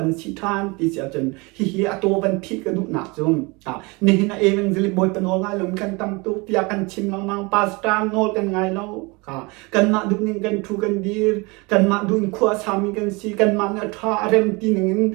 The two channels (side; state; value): left; quieter; 26.9 dB